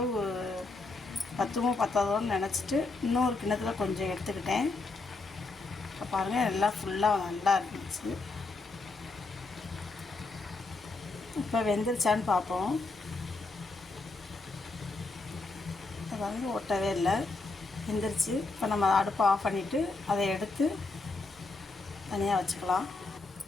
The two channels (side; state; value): right; quieter; 3.5 dB